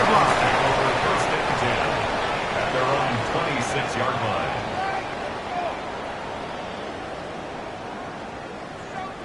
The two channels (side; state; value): both; identical; correlation 1.00